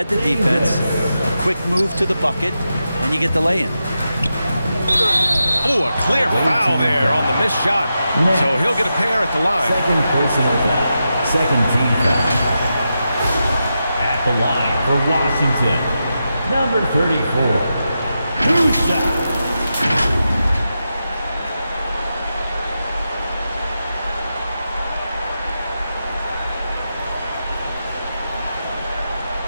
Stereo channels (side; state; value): both; inverted; correlation -0.88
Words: the defense, a quick move to the bucket, and you get the lay-in. Oh, a clear foul there on the missed shot. So he'll get a pair at the line. Second personal foul. Second team foul. At the line for Washington, number 34. 2 shots.